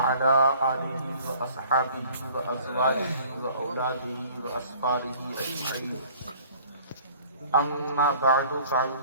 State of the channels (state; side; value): inverted; both; correlation -0.50